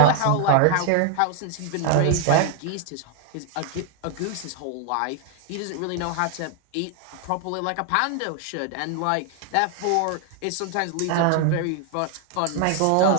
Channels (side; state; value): both; different; correlation 0.00